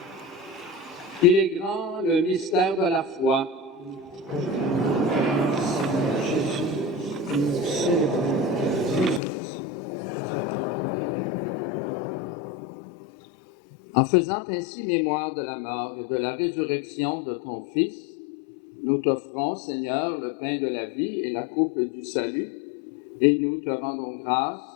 Il est grand le mystère de la foi. En faisant ainsi mémoire de la mort et de la résurrection de ton Fils, nous t'offrons, Seigneur, le pain de la vie et la coupe du salut, et nous te rendons grâce,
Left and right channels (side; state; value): right; drops out; at 9.2 s